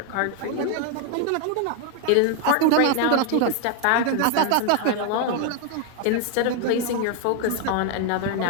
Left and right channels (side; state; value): both; different; correlation 0.00